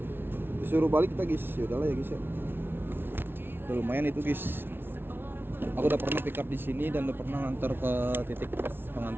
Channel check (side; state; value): left; late; 0.11 ms